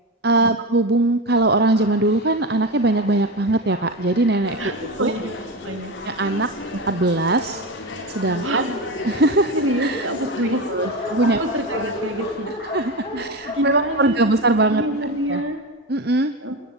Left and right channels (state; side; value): normal; both; correlation 0.20